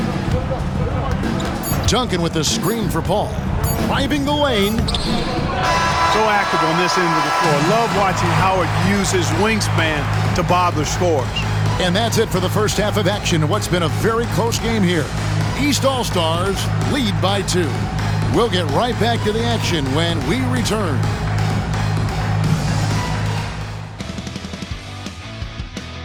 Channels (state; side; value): identical; both; correlation 1.00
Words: Duncan with the screen for Paul. Driving the lane. So active on this end of the floor. Love watching Howard use his wingspan to bother scores. And that's it for the first half of action in what's been a very close game here. East All-Stars lead by 2. We'll get right back to the action when we return.